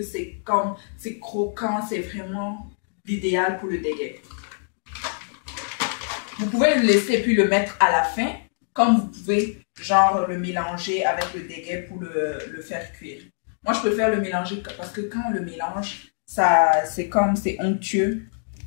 c'est croquant, c'est vraiment l'idéal pour le dégué. Vous pouvez le laisser puis le mettre à la fin, comme vous pouvez genre le mélanger avec le dégué pour le faire cuire. Moi, je préfère le mélanger parce que quand on le mélange, c'est onctueux,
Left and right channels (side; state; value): right; silent; digital silence